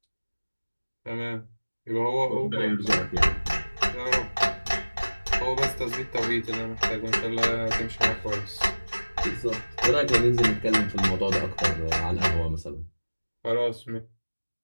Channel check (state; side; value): inverted; both; correlation -1.00